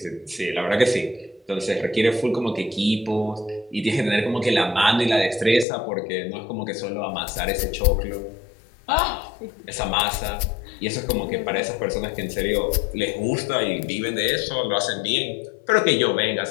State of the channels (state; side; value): drops out; right; at 5.7 s